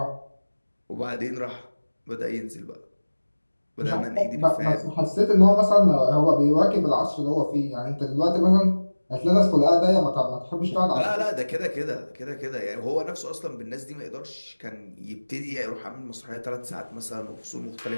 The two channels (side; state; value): both; inverted; correlation -1.00